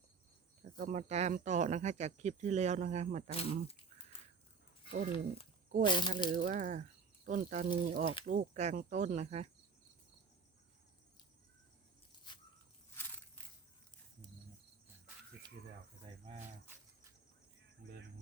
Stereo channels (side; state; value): left; quieter; 5.0 dB